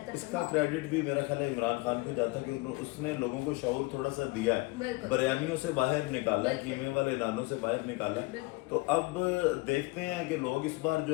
اس کا کریڈٹ بھی میرا خیال ہے عمران خان کو جاتا ہے کہ اس نے لوگوں کو شعور تھوڑا سا دیا ہے، بریانیوں سے باہر نکالا ہے، قیمے والے نانوں سے باہر نکالا ہے. تو اب دیکھتے ہیں کہ لوگ اس بار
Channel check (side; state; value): right; quieter; 24.1 dB